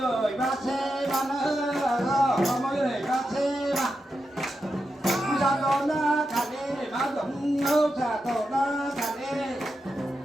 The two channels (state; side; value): normal; both; correlation 0.88